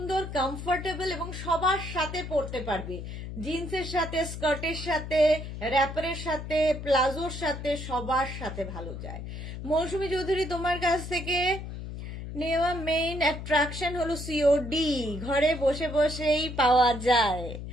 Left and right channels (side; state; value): left; noise; hum, 8 dB below the sound